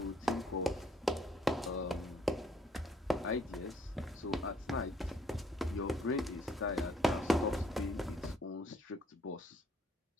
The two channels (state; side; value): normal; both; correlation 0.64